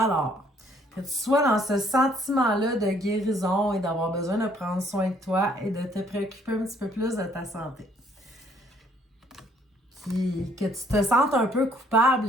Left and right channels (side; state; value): both; normal; correlation 0.64